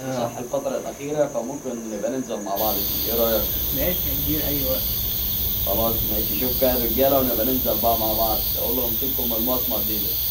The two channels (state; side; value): identical; both; correlation 1.00